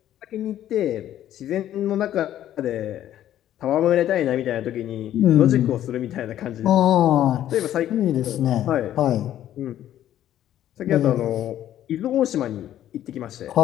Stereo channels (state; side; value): quieter; right; 11.9 dB